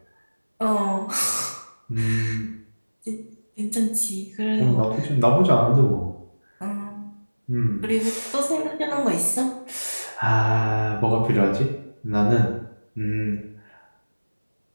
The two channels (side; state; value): both; inverted; correlation -1.00